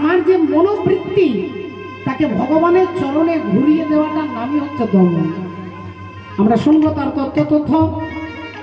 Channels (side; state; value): both; identical; correlation 1.00